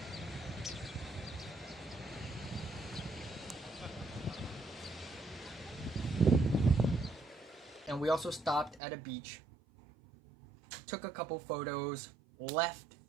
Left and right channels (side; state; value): left; drops out; at 8.8 s